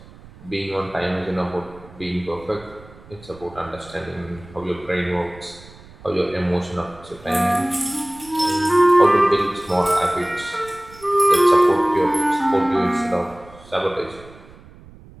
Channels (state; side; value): noise; right; rumble, 21 dB below the sound